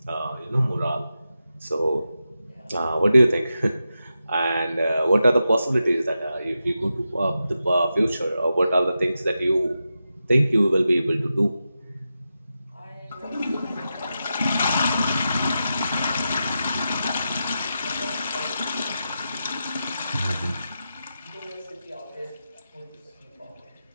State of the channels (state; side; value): inverted; both; correlation -0.89